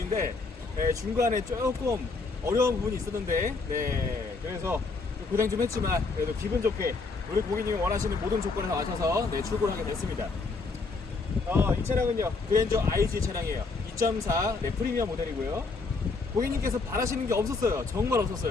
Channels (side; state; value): right; quieter; 4.0 dB